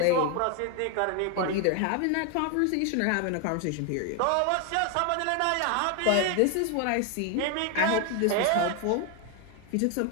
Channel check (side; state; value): both; different; correlation 0.01